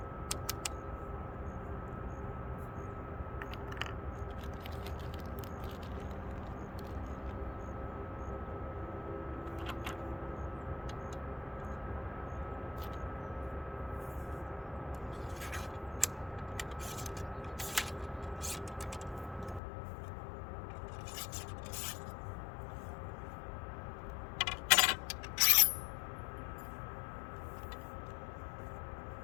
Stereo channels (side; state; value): right; drops out; at 19.6 s